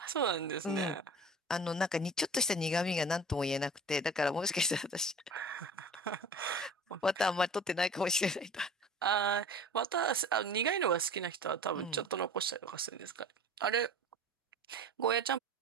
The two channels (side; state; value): both; normal; correlation 0.40